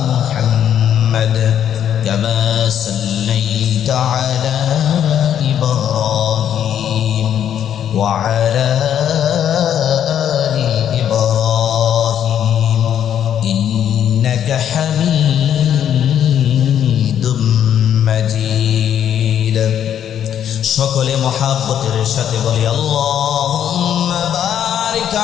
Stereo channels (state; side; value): quieter; right; 9.7 dB